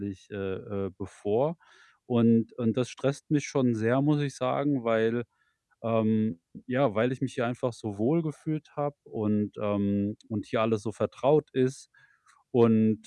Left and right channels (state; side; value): identical; both; correlation 1.00